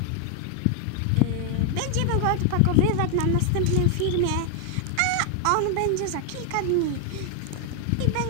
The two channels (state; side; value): different; both; correlation 0.00